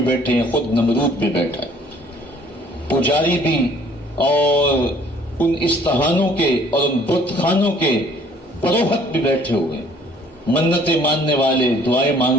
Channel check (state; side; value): normal; both; correlation 0.57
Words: بیٹھے ہیں، خود نمرود بھی بیٹھا ہے، پجاری بھی، اور ان استہانوں کے اور ان بت خانوں کے پروہت بھی بیٹھے ہوئے، منتیں ماننے والے، دعائیں